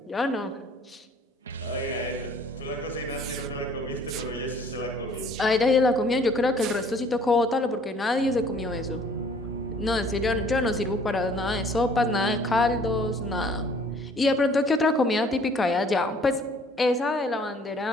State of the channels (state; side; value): normal; both; correlation 0.56